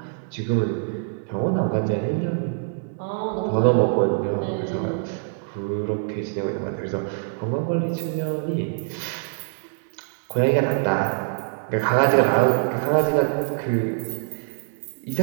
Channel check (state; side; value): silent; left; digital silence